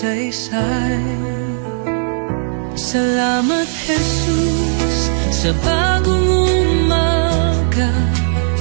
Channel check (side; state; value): left; silent; digital silence